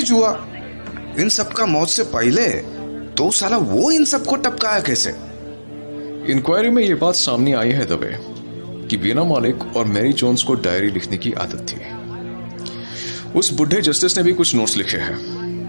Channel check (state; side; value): inverted; both; correlation -1.00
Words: हुआ। इन सब का मौत से पहले तो साला वो इन सबको टपकाया कैसे? इंक्वायरी में ये बात सामने आई है दबे कि बीना मालिक और मैरी जोन्स को डायरी लिखने की आदत थी। उस बुढ़े जस्टिस ने भी कुछ नोट्स लिखे